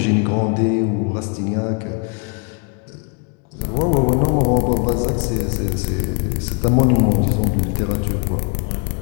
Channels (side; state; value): right; quieter; 35.3 dB